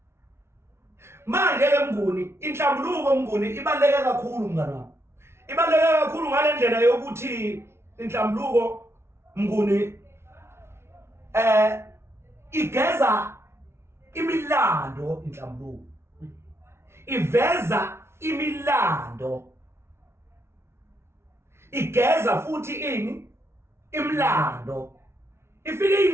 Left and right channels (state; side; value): late; left; 0.12 ms